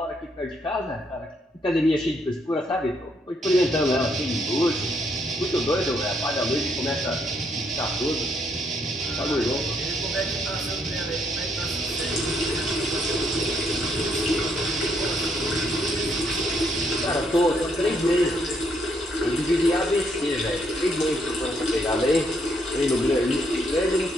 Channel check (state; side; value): normal; both; correlation 0.73